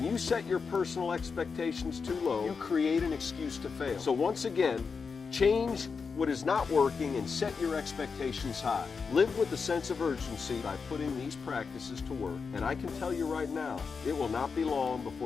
you set your personal expectations too low, you create an excuse to fail. So once again, change what is not working and set your expectations high. Live with a sense of urgency by putting these practices to work. And I can tell you right now, it will not be long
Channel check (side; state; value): right; quieter; 5.3 dB